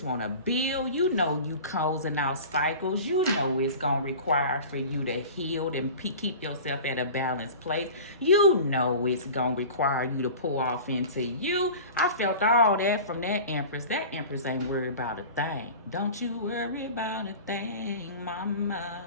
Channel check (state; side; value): inverted; both; correlation -0.37